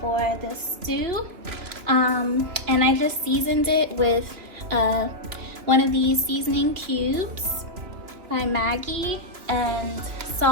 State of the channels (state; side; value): late; left; 2.9 ms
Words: for the stew. And I just seasoned it with one of these seasoning cubes by Maggie, and